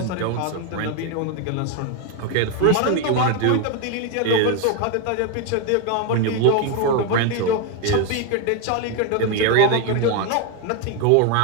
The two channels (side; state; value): both; different; correlation 0.02